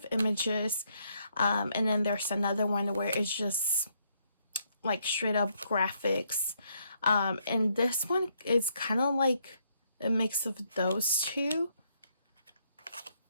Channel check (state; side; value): inverted; both; correlation -0.73